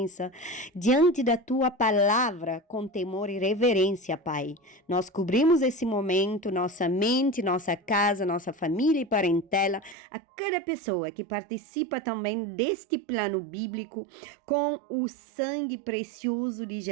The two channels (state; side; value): drops out; left; at 10.0 s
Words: diante da Tua palavra, com temor e reverência, Pai. Nós cobrimos esse momento, nossa mente, nossa casa, nossa família e parentela, a cada pessoa que participa também deste plano bíblico, com o sangue precioso de